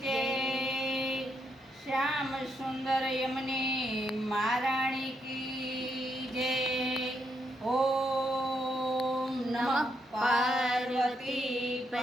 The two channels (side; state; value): both; normal; correlation 0.79